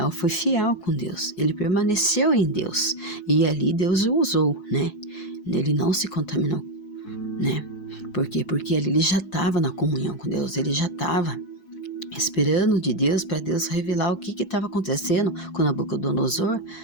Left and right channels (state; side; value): late; right; 4.7 ms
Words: foi fiel com Deus, ele permaneceu em Deus e ali Deus o usou, né? Ele não se contaminou, né? Por quê? Porque ali ele já estava na comunhão com Deus, ele já estava esperando de Deus para Deus revelar o que estava acontecendo com Nabucodonosor,